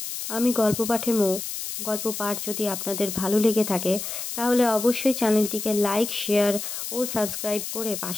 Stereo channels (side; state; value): left; noise; hiss, 6 dB below the sound